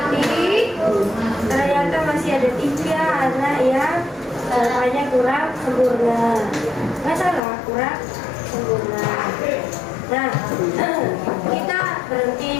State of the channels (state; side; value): drops out; right; at 7.4 s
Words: ternyata masih ada 3 anak yang jawabannya kurang sempurna. Masalah kurang sempurna. Nah, kita